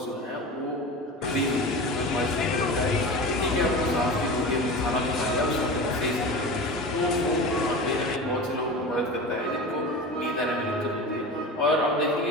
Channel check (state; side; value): normal; both; correlation 0.31